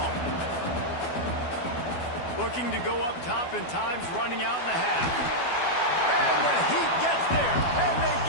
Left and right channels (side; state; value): right; late; 12 ms